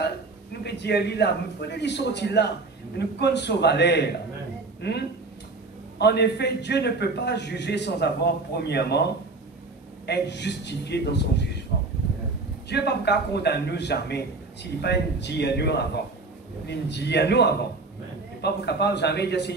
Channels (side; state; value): left; quieter; 3.6 dB